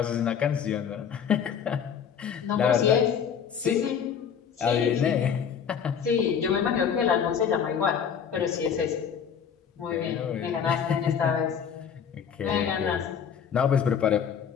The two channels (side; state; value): right; quieter; 7.5 dB